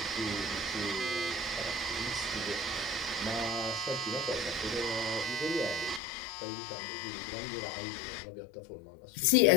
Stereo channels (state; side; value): drops out; right; at 6.0 s